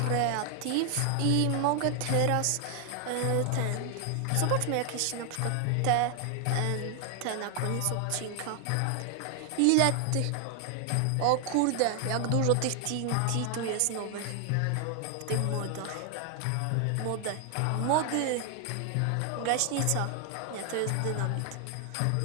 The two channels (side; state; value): both; different; correlation 0.00